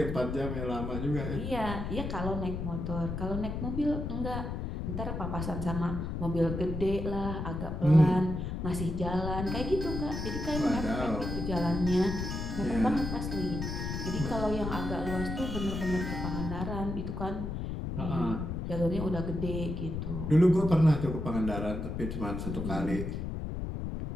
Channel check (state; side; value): noise; left; rumble, 4 dB below the sound